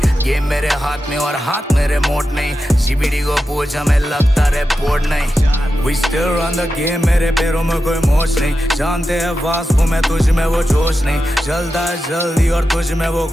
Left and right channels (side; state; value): both; normal; correlation 0.91